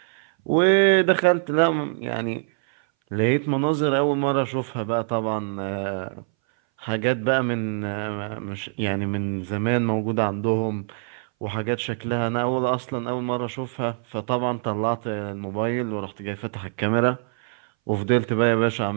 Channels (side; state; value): left; silent; 60 dB below the other